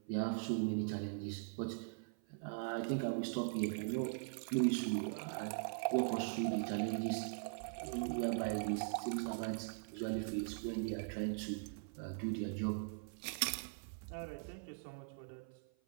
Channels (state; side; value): silent; left; 50 dB below the other